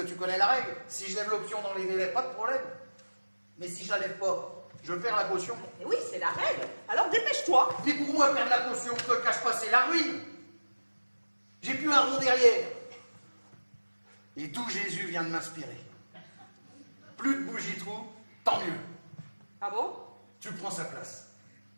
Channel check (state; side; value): inverted; both; correlation -1.00